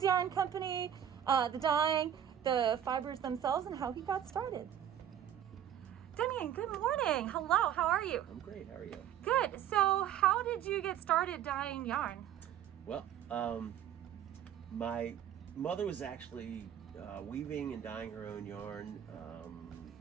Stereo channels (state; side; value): quieter; left; 10.1 dB